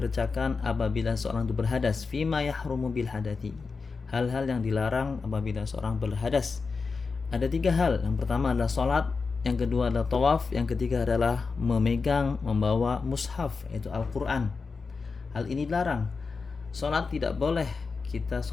apabila seorang itu berhadas. Fima yahrumu bil hadati, hal-hal yang dilarang apabila seorang berhadas. Ada 3 hal. Yang pertama adalah sholat, yang kedua adalah tawaf, yang ketiga adalah membawa mushaf, yaitu Al-Quran. Hal ini dilarang. Sholat tidak boleh kita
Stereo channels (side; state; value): right; quieter; 4.6 dB